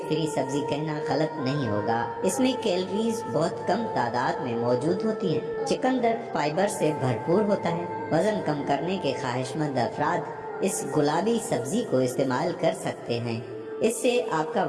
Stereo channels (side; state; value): both; identical; correlation 1.00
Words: فری سبزی کہنا غلط نہیں ہوگا، اس میں کیلوریز بہت کم تعداد میں موجود ہوتی ہیں۔ چقندر فائبر سے بھرپور ہوتا ہے۔ وزن کم کرنے کے خواہش مند افراد اس گلابی سبزی کو استعمال کر سکتے ہیں، اس سے آپ کا